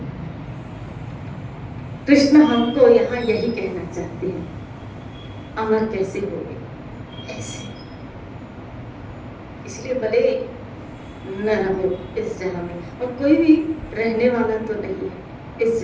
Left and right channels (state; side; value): identical; both; correlation 1.00